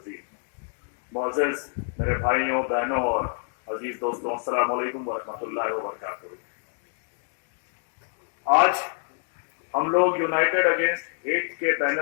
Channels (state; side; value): silent; right; 56 dB below the other